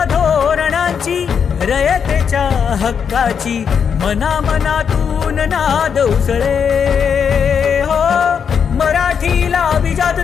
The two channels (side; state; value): right; quieter; 7.0 dB